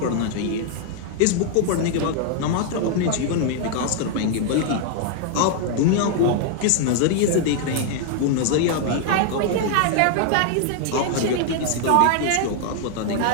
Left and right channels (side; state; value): both; different; correlation 0.00